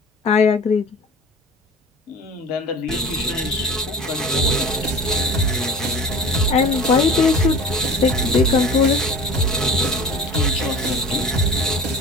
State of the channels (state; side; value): normal; both; correlation 0.37